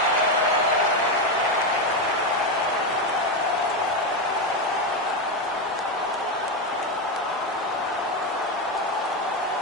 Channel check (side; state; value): both; normal; correlation 0.10